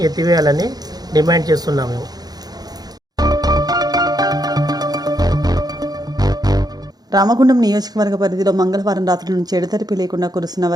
ఎత్తివేయాలని డిమాండ్ చేస్తున్నాము. రామగుండం నియోజకవర్గ పరిధిలో మంగళవారం రాత్రి నుంచి ఎడతెరిపి లేకుండా కురుస్తున్న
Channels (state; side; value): late; left; 0.19 ms